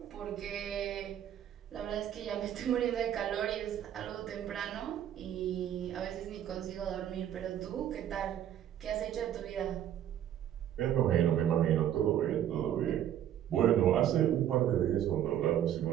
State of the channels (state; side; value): quieter; left; 10.7 dB